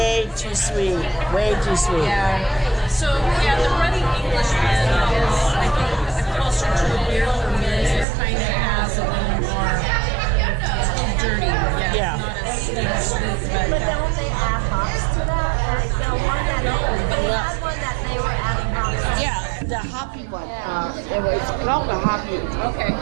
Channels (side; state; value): left; drops out; at 8.1 s